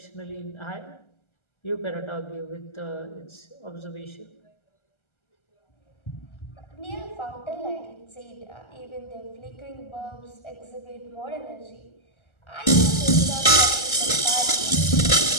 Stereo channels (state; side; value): late; right; 1.3 ms